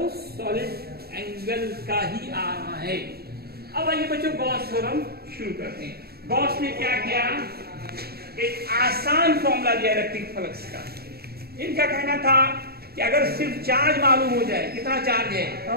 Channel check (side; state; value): left; late; 0.46 ms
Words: सॉलिड एंगल का ही आ रहा है। अब आइए बच्चों गॉस थ्योरम शुरू करते हैं। गॉस ने क्या किया, एक आसान फॉर्मूला दिया इलेक्ट्रिक फ्लक्स का। इनका कहना था कि अगर सिर्फ चार्ज मालूम हो जाए, कितना चार्ज है, तो